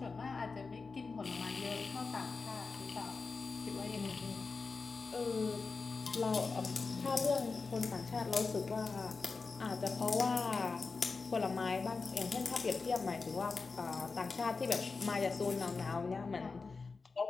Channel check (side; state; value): right; quieter; 4.4 dB